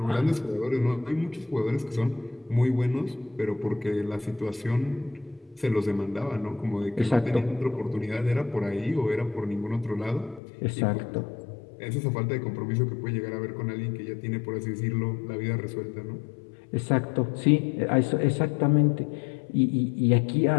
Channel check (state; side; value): drops out; right; at 10.4 s